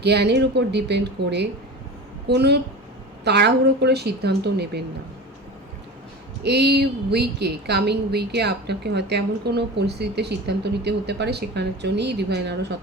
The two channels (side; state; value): both; normal; correlation 0.32